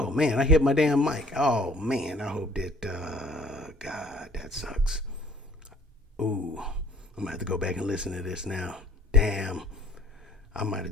man, I hit my damn mic. Oh man, I hope that God, that sucks. Ooh, I'm gonna have to go back and listen to this now. Damn. I might have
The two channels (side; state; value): both; normal; correlation 0.55